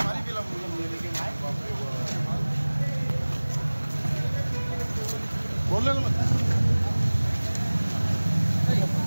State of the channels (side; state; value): both; inverted; correlation -1.00